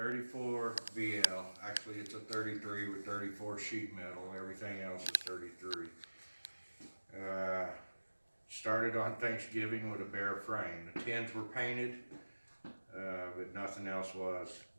VL. Actually, it's a 33 with 34 sheet metal. Everything else is 33. Started on Thanksgiving with a bare frame. The tins were painted, but nothing else was.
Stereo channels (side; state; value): both; inverted; correlation -1.00